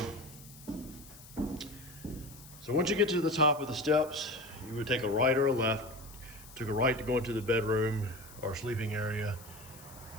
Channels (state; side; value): noise; left; hiss, 19 dB below the sound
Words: So once you get to the top of the steps, you would take a right or a left. Took a right to go into the bedroom or sleeping area,